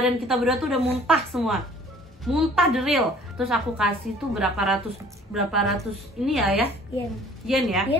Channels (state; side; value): normal; both; correlation 0.53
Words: kita berdua tuh udah muntah semua. Muntah the real. Terus aku kasih tuh berapa ratus ini ya? Yen ya?